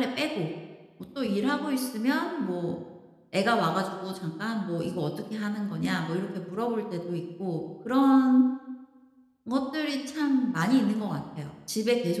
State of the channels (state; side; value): identical; both; correlation 1.00